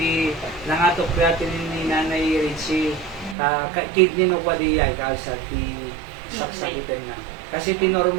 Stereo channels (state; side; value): drops out; left; at 3.4 s